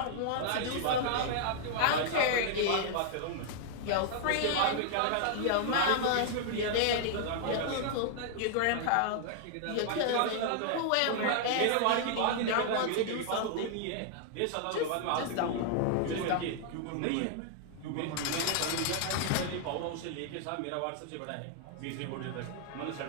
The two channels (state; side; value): different; both; correlation -0.01